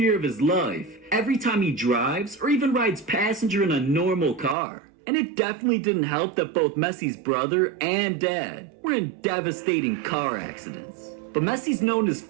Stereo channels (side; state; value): left; drops out; at 4.5 s